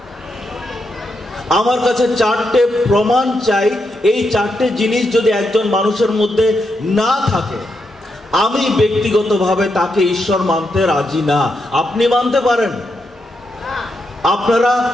আমার কাছে 4টে প্রমাণ চাই। এই 4টে জিনিস যদি একজন মানুষের মধ্যে না থাকে, আমি ব্যক্তিগতভাবে তাকে ঈশ্বর মানতে রাজি না। আপনি মানতে পারেন। আপনারা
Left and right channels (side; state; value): both; normal; correlation 0.83